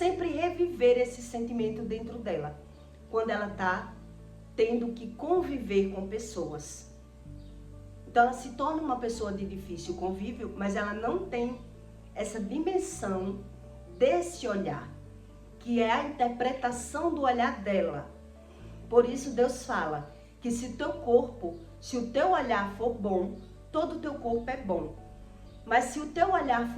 reviver esse sentimento dentro dela, quando ela está tendo que conviver com pessoas. Então ela se torna uma pessoa de difícil convívio, mas ela não tem essa dimensão desse olhar, que é a interpretação do olhar dela. Por isso Deus fala que se o teu olhar for bom, todo o teu corpo é bom. Mas se o teu olhar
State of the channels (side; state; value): both; identical; correlation 1.00